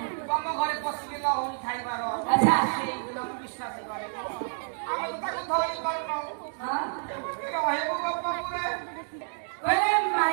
ତମ ଘରେ ପଶିକି ଲହରୀ ଖାଇବାର ସେଇଦିନ ମୁଁ ବିଶ୍ୱାସ କରେ। ଆମେ ତ ତାକୁ ଧରି ପାରୁନାହୁଁ ରହିବୁ ଗୋପପୁରେ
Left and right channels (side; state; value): left; silent; 59 dB below the other